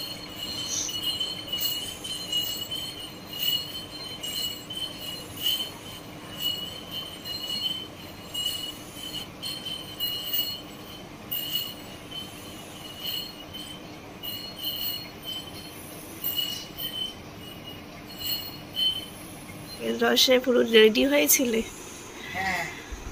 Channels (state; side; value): identical; both; correlation 1.00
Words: রসে পুরো রেডি হয়েছিলে?